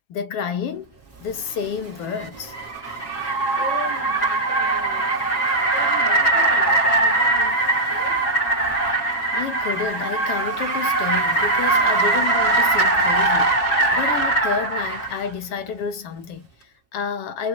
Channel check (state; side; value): late; right; 7.4 ms